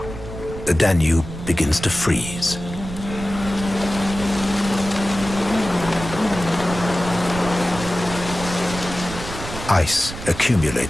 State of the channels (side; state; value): right; noise; rumble, 10 dB below the sound